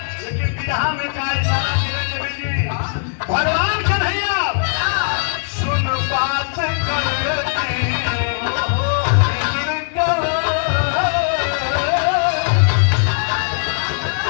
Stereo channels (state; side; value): silent; right; digital silence